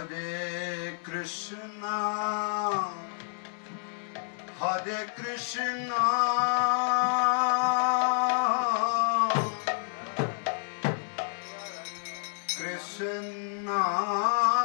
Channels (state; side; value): silent; right; digital silence